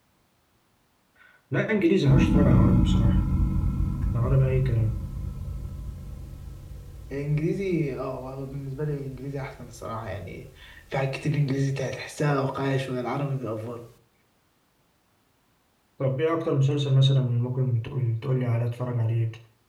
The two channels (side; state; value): both; identical; correlation 1.00